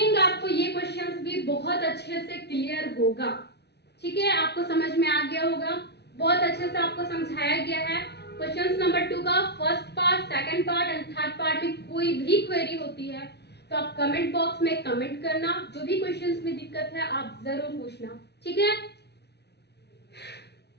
आपको ये क्वेश्चंस भी बहुत अच्छे से क्लियर होगा, ठीक है, आपको समझ में आ गया होगा, बहुत अच्छे से आपको समझाया गया है। क्वेश्चंस नंबर 2 का first part, second part and third part में कोई भी क्वेरी होती है तो आप कमेंट बॉक्स में कमेंट करना, जो भी क्वेश्चंस में दिक्कत है आप जरूर पूछना, ठीक है,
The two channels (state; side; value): late; right; 0.49 ms